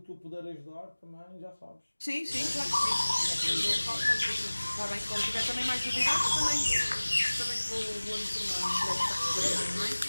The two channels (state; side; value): inverted; both; correlation -1.00